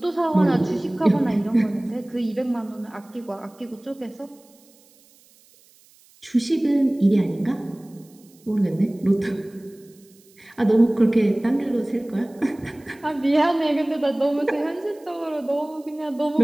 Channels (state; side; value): noise; right; hiss, 29 dB below the sound